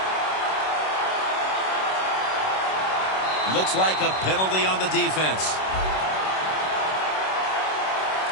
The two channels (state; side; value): late; right; 26 ms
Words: Looks like a penalty on the defense.